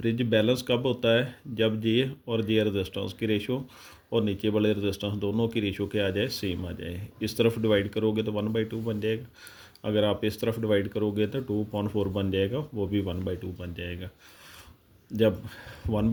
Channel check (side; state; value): both; identical; correlation 1.00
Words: बैलेंस कब होता है? जब जे और जे रेजिस्टेंस की रेशो और नीचे वाले रेजिस्टेंस दोनों की रेशो क्या आ जाए, सेम आ जाए। इस तरफ डिवाइड करोगे तो 1/2 बन जाएगा। अगर आप इस तरफ डिवाइड करोगे तो 2/4 बन जाएगा, वो भी 1/2 बन जाएगा। जब